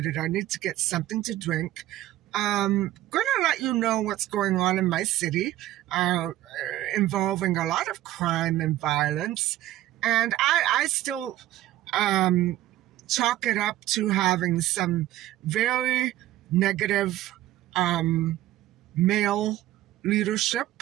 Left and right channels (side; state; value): left; quieter; 14.6 dB